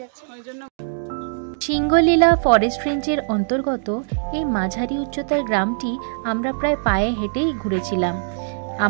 যাচ্ছে। সিংহলীলা ফরেস্ট রেঞ্জের অন্তর্গত এই মাঝারি উচ্চতার গ্রামটি আমরা প্রায় পায়ে হেঁটেই ঘুরেছিলাম।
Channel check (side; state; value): left; silent; digital silence